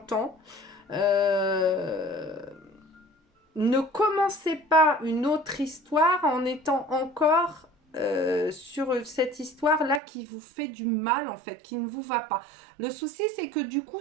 Ne commencez pas une autre histoire en étant encore sur cette histoire-là qui vous fait du mal, en fait, qui ne vous va pas. Le souci, c'est que du coup,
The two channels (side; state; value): left; drops out; at 10.0 s